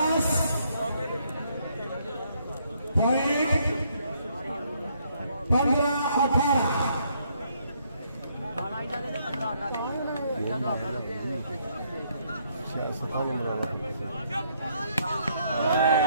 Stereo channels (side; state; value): both; inverted; correlation -0.70